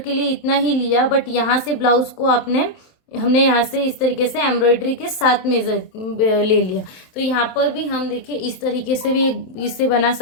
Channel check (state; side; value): late; right; 27 ms